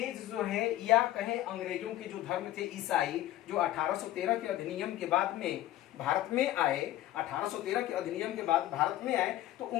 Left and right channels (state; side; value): quieter; right; 14.3 dB